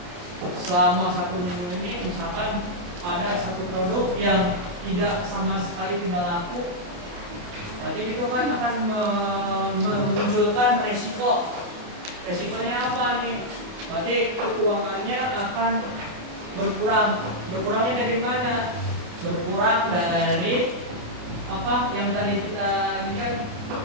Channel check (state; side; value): late; left; 28 ms